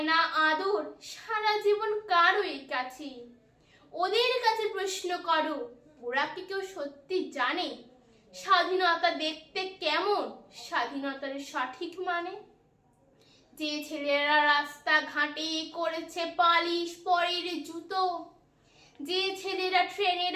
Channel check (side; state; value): both; identical; correlation 1.00